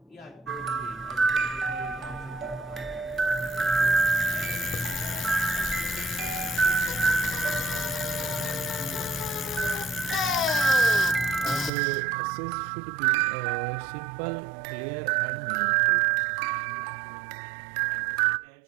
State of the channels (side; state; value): left; drops out; at 11.7 s